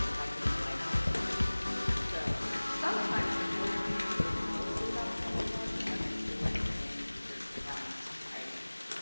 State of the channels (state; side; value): inverted; both; correlation -1.00